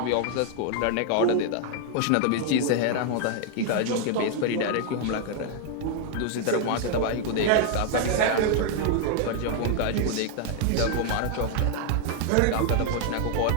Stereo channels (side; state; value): both; different; correlation 0.00